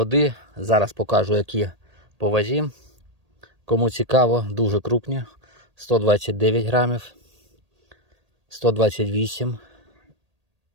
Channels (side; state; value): left; late; 1.8 ms